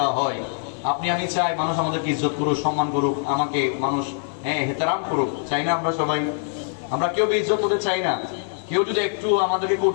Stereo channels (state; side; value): silent; right; digital silence